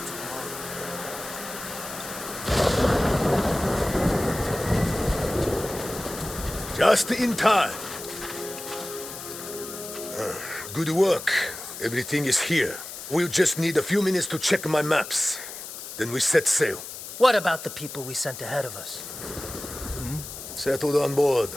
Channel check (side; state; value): left; noise; hiss, 11 dB below the sound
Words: tomorrow. Just in time. Good work. Everything is here. We'll just need a few minutes to check my maps. Then we set sail. What about the people we sent ahead of us? Settled on board,